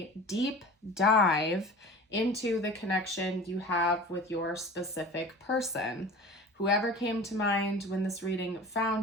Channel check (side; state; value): both; normal; correlation 0.38